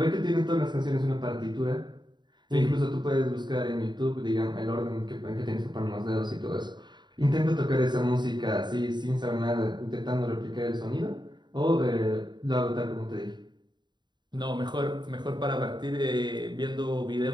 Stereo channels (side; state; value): left; late; 0.21 ms